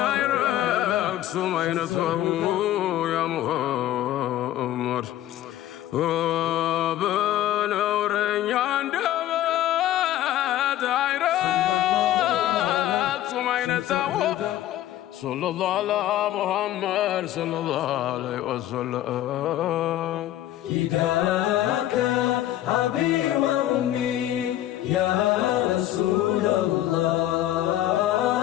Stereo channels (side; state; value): right; quieter; 13.3 dB